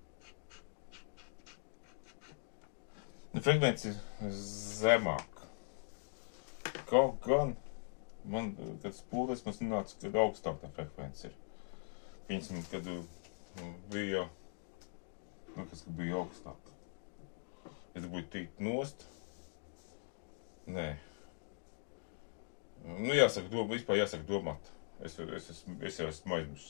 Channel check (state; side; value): silent; right; digital silence